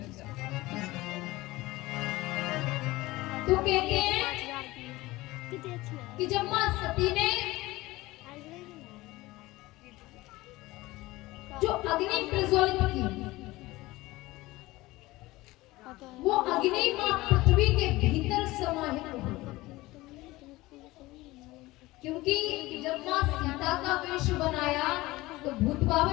तो कहते हैं कि जब माँ सती ने जो अग्नि प्रज्वलित की, वो अग्नि माँ पृथ्वी के भीतर समाहित हो, क्योंकि जब माँ सीता का वेश बनाया तो भूत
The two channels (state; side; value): quieter; right; 19.4 dB